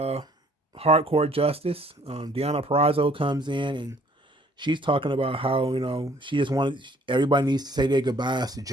hardcore justice. Deanna Perrazzo comes in and she's talking about how, she just wanted, everybody needs to say their goodbyes to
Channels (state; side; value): normal; both; correlation 0.59